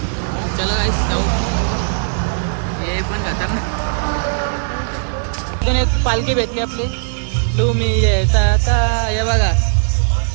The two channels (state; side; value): silent; left; 68 dB below the other